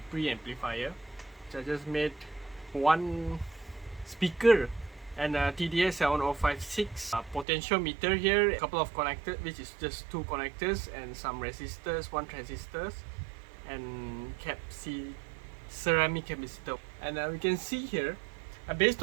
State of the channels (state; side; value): drops out; left; at 7.5 s